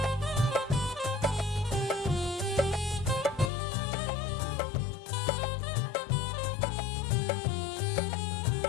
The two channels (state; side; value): drops out; right; at 3.5 s